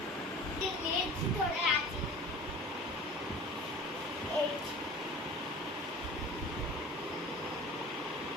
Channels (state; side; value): normal; both; correlation 0.41